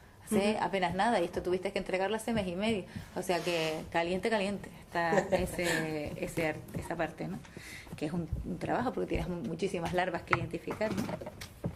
hace apenas nada, y esto tuviste que entregarlo hace mes y medio, o sea que caliente está esa parte, ¿no? Que es un trabajo porque tienes muchísimas larvas que identificar, ¿no?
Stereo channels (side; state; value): both; identical; correlation 1.00